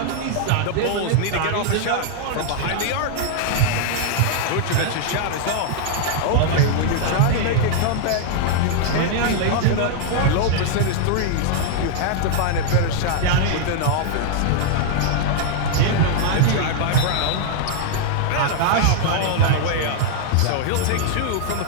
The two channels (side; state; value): both; different; correlation 0.00